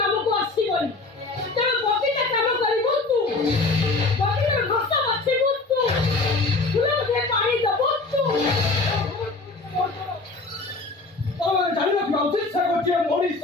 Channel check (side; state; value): right; quieter; 3.5 dB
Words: ଆସିବନି ତେଣୁ ବଗିଚା କାମ କରିବୁ ତୁ। ବଗିଚାର ଘାସ ବାଛିବୁ ତୁ। ଫୁଲରେ ପାଣି ଦେବୁ ତୁ। ତମେ ଜାଣିନ କି ଉଚିତ ସେ ଗୋଟିଏ ମଣିଷ।